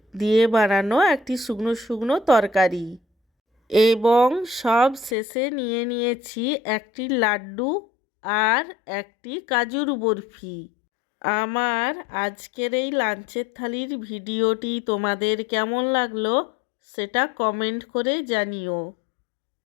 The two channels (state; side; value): drops out; right; at 5.2 s